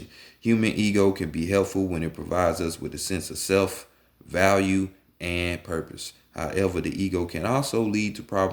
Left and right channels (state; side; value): identical; both; correlation 1.00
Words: Human ego can be helpful when it provides us with a sense of self, value, and purpose. However, the ego can also lead to